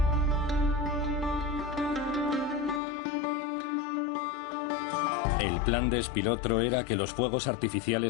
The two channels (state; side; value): drops out; right; at 2.8 s